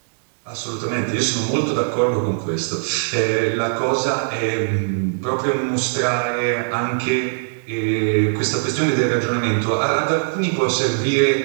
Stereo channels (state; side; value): silent; left; digital silence